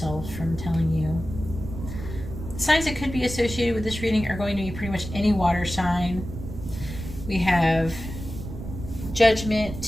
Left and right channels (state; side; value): noise; right; rumble, 9 dB below the sound